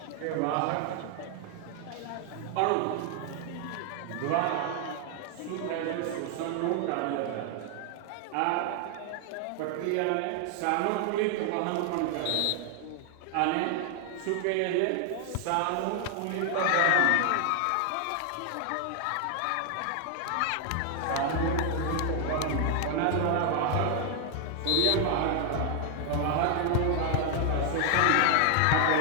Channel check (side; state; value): both; different; correlation 0.00